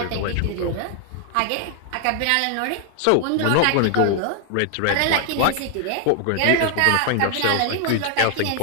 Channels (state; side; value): different; both; correlation 0.00